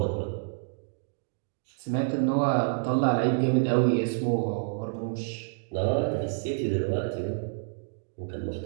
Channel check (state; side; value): silent; left; digital silence